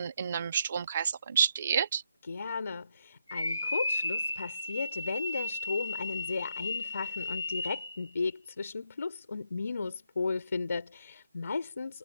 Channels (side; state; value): both; inverted; correlation -0.79